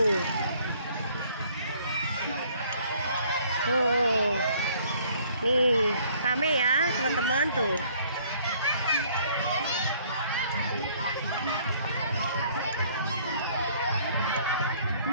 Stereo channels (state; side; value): inverted; both; correlation -0.59